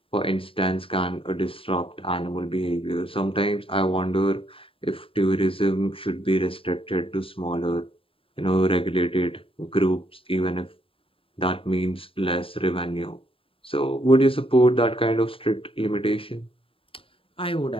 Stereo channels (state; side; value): late; right; 0.27 ms